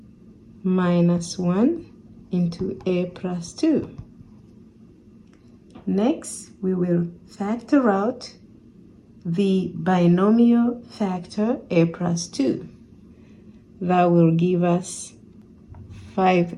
minus 1 into a plus 2. Next, we will factor out the binomial factor a plus 2. That will give us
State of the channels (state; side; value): identical; both; correlation 1.00